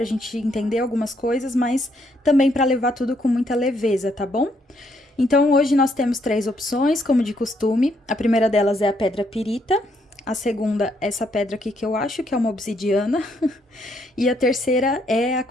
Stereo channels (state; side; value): normal; both; correlation 0.72